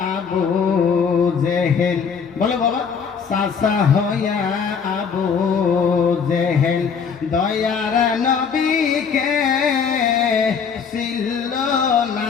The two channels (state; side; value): quieter; right; 6.3 dB